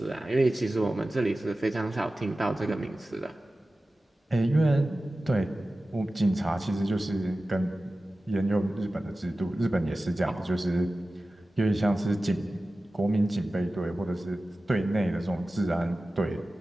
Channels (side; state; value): both; normal; correlation 0.96